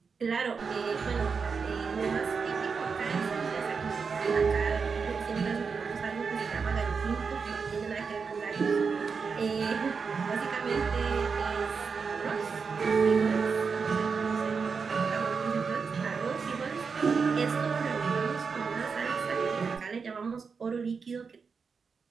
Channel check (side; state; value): left; quieter; 5.4 dB